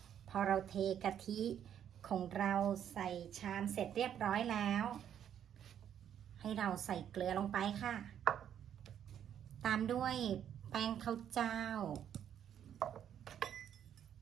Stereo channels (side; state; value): left; quieter; 9.6 dB